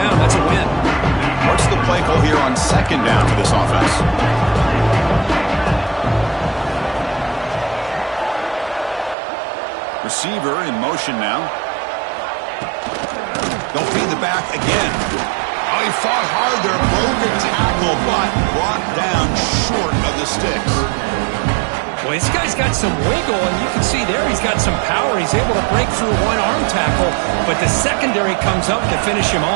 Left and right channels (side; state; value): left; drops out; at 9.2 s